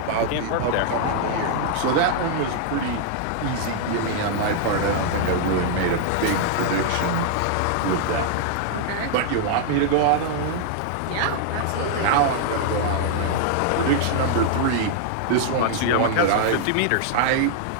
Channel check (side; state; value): both; different; correlation -0.01